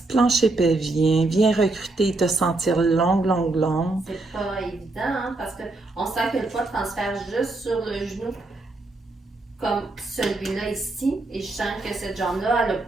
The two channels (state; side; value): quieter; left; 3.0 dB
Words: plancher pelvien, viens recruter et te sentir longue. C'est pas évident, hein, parce qu'on sent que le poids transfère juste sur le genou, comme celui-là ici, et je sens que cette jambe-là, elle n'a